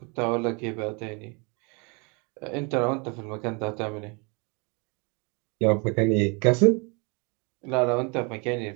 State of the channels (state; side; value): quieter; left; 32.0 dB